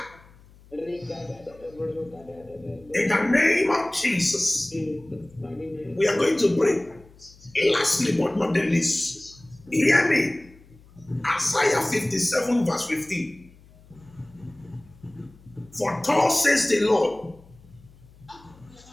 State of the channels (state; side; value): noise; left; hum, 25 dB below the sound